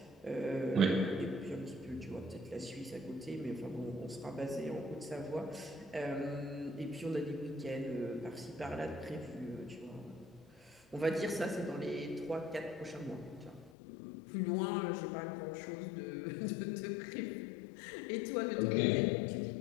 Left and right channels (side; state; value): right; drops out; at 13.7 s